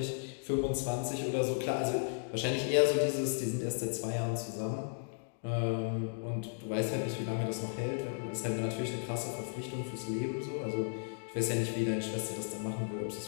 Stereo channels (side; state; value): right; silent; digital silence